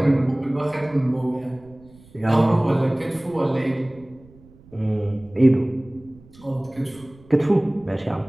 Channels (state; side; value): noise; right; rumble, 25 dB below the sound